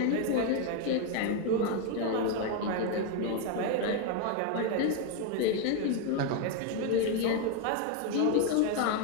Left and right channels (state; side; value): different; both; correlation 0.01